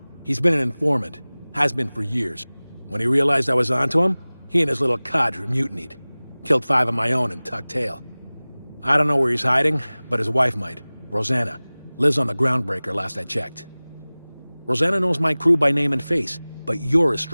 He's been an informant. Has been for years. When he realized I was onto him, he and his little cadre mutinied. Killed 5 of my own and tucked tail. I don't know where he's hiding, but his wife might. Rosanna. Lives on the Groundbreaker last I checked. Rosanna knows my crew by name and face, but you're a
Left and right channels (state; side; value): inverted; both; correlation -1.00